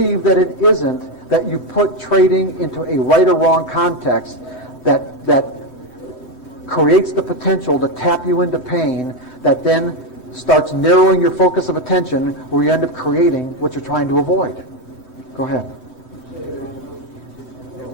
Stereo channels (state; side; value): late; left; 3.2 ms